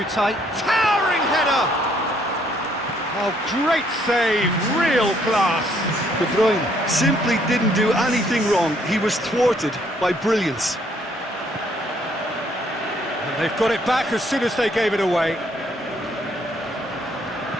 tight. Towering header! Oh, great save, real class. De Bruyne simply didn't do anything wrong. He was thwarted by brilliance. And they've got it back as soon as they gave it away.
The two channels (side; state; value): both; normal; correlation 0.67